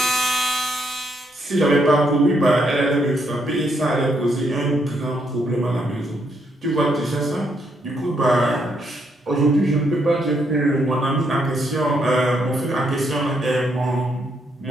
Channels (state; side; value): normal; both; correlation 0.75